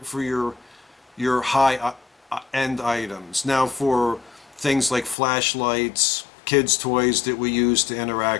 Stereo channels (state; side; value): drops out; right; at 5.2 s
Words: your high end items. Now for things like flashlights, kids' toys that we use to